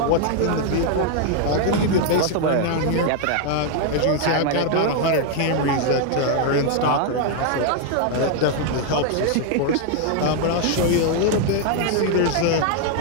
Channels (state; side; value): different; both; correlation 0.00